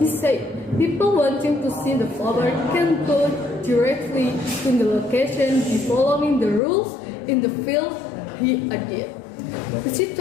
said, people wanting to see the flower can go directly to the location by following the rules in the field, he added.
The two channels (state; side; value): drops out; right; at 6.6 s